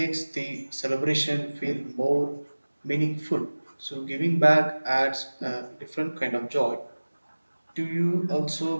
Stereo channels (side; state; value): both; inverted; correlation -1.00